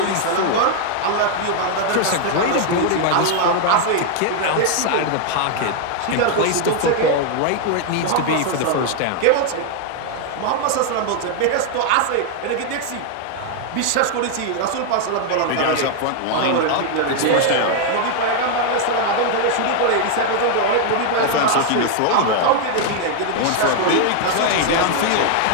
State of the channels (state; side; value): different; both; correlation 0.00